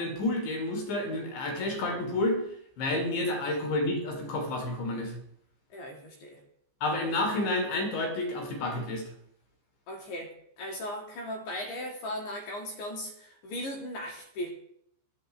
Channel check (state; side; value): late; right; 15 ms